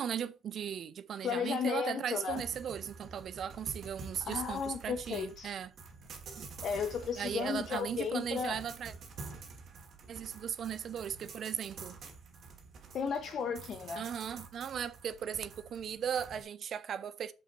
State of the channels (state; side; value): normal; both; correlation 0.65